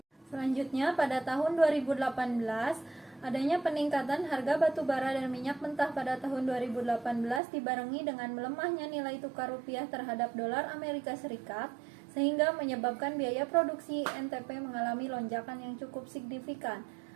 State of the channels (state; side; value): drops out; left; at 7.4 s